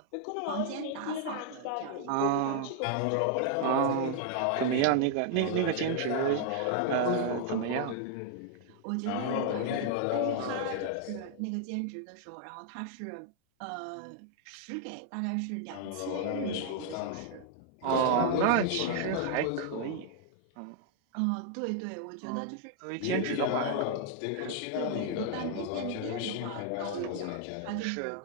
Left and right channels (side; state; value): both; different; correlation 0.00